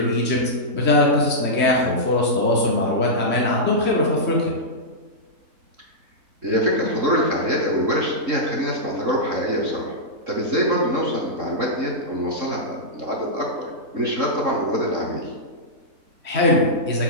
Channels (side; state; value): left; late; 3.7 ms